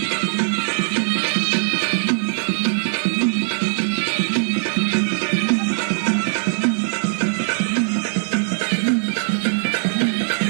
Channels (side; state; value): left; silent; 65 dB below the other